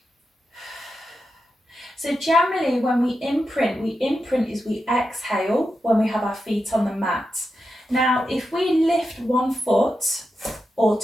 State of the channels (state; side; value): normal; both; correlation 0.88